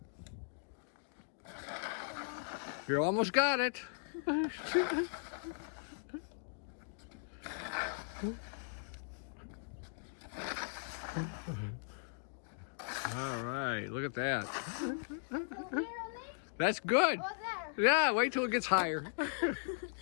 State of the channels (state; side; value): silent; right; digital silence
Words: You almost got it. All right, look at that. That's good. Yeah, wait till it gets higher.